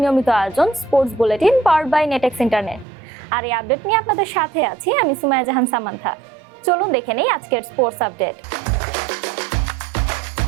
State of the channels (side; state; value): left; drops out; at 2.9 s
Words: আয়োজন sports bulletin powered by Netex internet. আর এই আপডেট নিয়ে আপনাদের সাথে আছি আমি সুমাইয়া জাহান সামান্থা। চলুন দেখে নেই আজকের স্পোর্টস আপডেট।